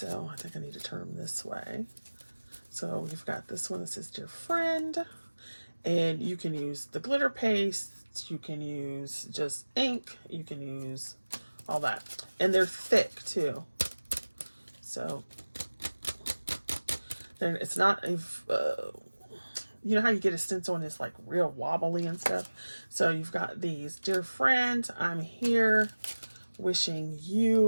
I think I need to turn them this way. So you've got this one that says Dear Friend, and you can use the glitter paste, you can use just ink, you can use all that. And they're thick too. So then it's not, you know how you get a stencil and it's like real wobbly and stuff? So you've got these. Dear Friend, I'm here wishing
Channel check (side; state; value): both; inverted; correlation -1.00